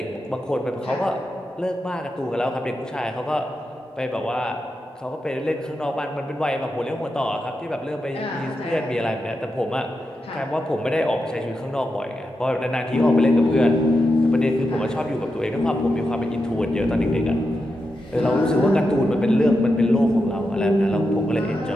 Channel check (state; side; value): normal; both; correlation 0.87